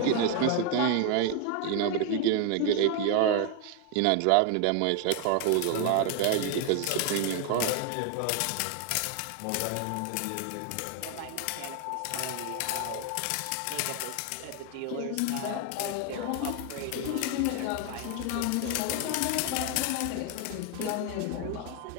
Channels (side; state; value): both; different; correlation 0.01